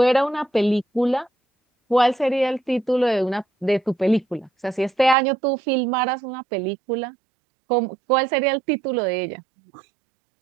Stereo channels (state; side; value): drops out; left; at 5.2 s